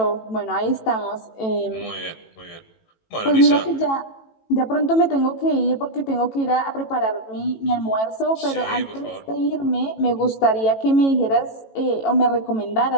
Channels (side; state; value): right; late; 18 ms